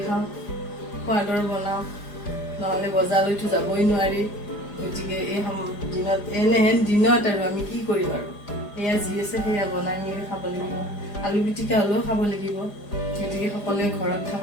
খাওঁ, সোৱাদৰ বনাওঁ, নহ'লে বজাৰলৈতো যাবই নোৱাৰি। গতিকে এই দিনত এনেহেন দিনত আৰু আমি কি কৰিম আৰু, সেয়া যি আছে সেয়া বনাই মেলি খাব লাগিব। আলু পিটিকা হ'লেও খাব লাগিব। গতিকে সকলোৱে ঘৰত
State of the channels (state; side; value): late; right; 4.9 ms